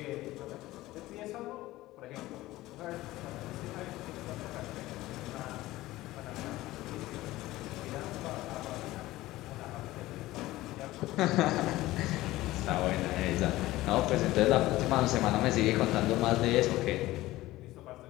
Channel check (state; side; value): quieter; right; 17.3 dB